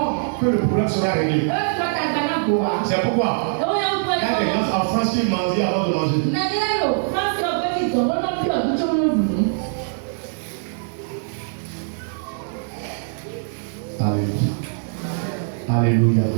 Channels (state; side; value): silent; left; 64 dB below the other